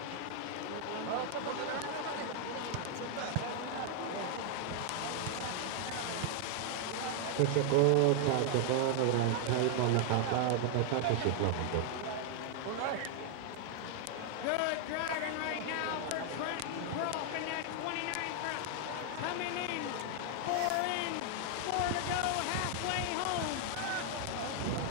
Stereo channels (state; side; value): different; both; correlation 0.00